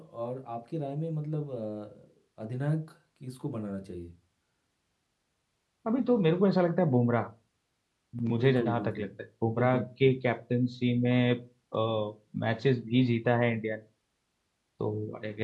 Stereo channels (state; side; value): identical; both; correlation 1.00